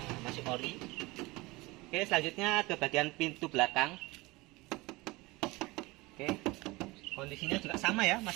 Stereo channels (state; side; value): quieter; left; 22.3 dB